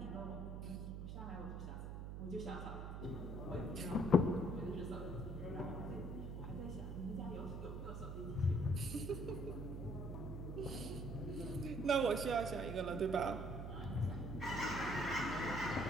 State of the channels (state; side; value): noise; right; hum, 6 dB below the sound